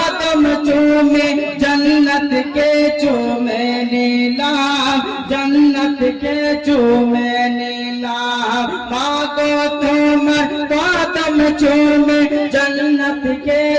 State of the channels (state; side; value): identical; both; correlation 1.00